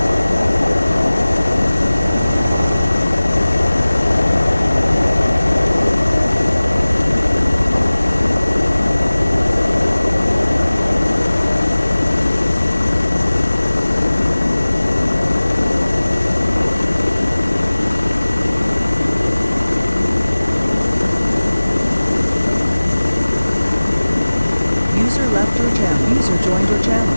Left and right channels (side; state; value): both; inverted; correlation -0.99